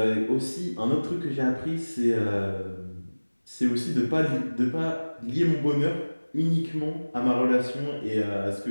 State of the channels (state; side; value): inverted; both; correlation -1.00